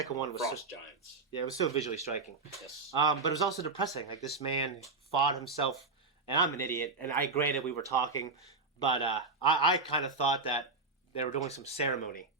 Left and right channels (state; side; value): quieter; left; 3.9 dB